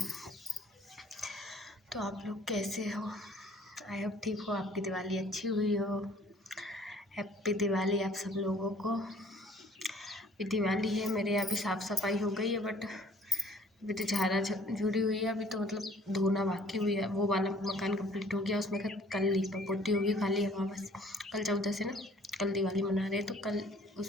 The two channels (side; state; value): both; normal; correlation 0.56